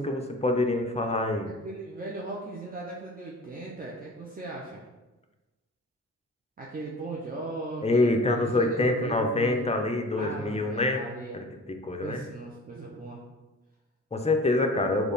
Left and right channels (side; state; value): both; normal; correlation 0.41